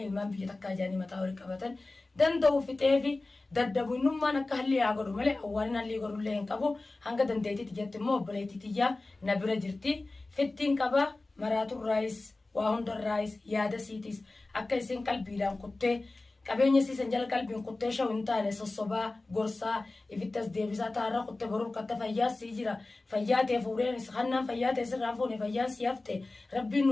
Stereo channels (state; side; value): quieter; right; 3.2 dB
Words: ilmaan biyya takkaa jaanii mataa walii qabatan danda'u fixeefi daddabu innummaan akka halli haa godhu malee awwaalin halli godhullee hin qabu hanga dandeetitti jetti immoo obboleettitiyyaa na bira jirti fittiin qaba maraatuun raayis waa hundarraayis yaada siitis akka isin qalbiidhaan kuttee qabeenya siisan jala qalbiin kuttee shaw hin taane sossobaa gorsaa ifittas deebisaa taarra kuttee boruu katta fayyaa sii jira fayyaa ta'e fuudheen hannaan fayyaa ta'e sirraan fuune fayyaa sii hafte rabbiin